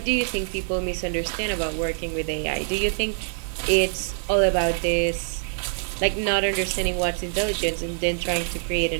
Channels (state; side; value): silent; left; digital silence